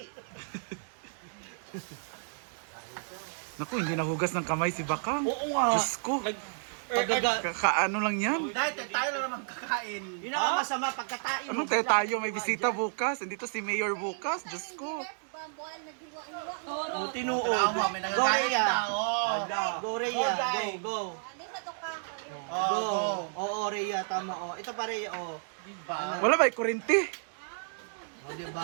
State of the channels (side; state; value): left; silent; digital silence